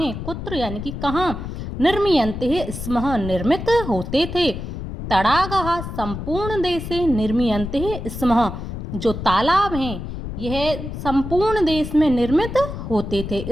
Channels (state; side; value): noise; left; rumble, 7 dB below the sound